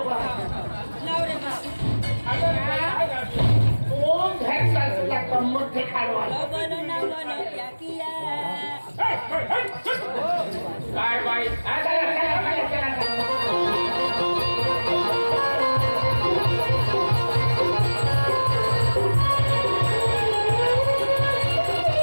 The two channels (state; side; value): inverted; both; correlation -1.00